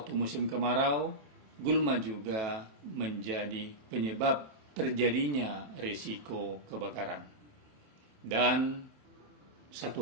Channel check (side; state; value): left; late; 27 ms